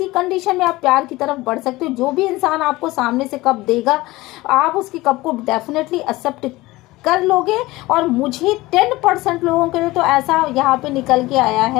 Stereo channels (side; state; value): right; quieter; 19.5 dB